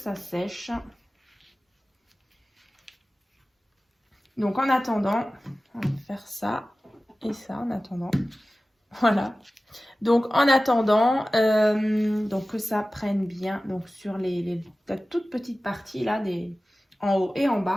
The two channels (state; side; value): normal; both; correlation 0.96